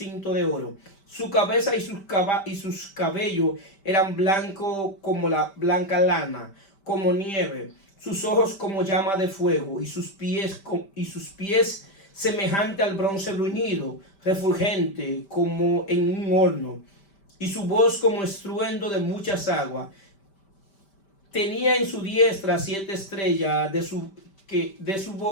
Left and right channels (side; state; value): right; late; 5.1 ms